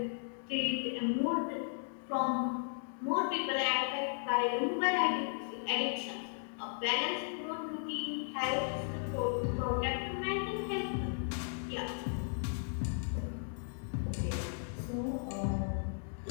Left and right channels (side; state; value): right; silent; digital silence